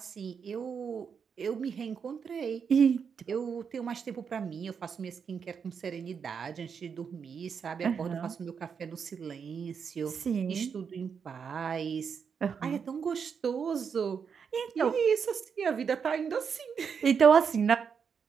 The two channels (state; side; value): quieter; left; 6.5 dB